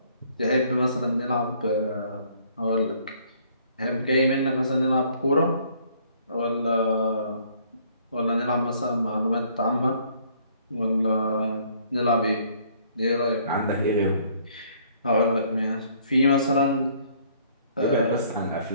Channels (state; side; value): inverted; both; correlation -0.62